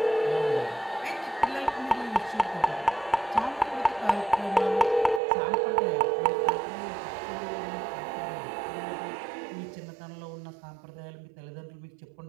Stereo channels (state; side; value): drops out; left; at 5.2 s